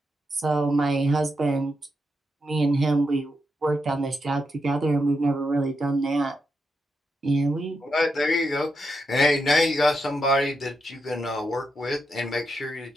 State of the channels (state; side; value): normal; both; correlation 0.84